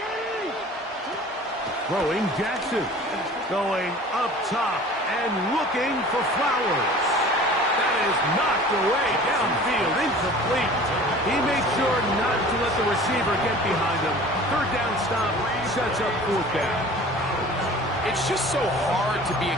Throwing Jackson. Going up top and looking for Flowers. That is knocked away downfield, incomplete. He made sure not to let the receiver get behind him. Third down stop sets up fourth down. It's just so hard to be a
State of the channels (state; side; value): normal; both; correlation 0.44